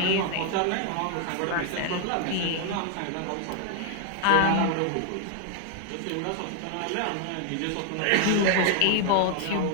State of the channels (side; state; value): both; different; correlation 0.00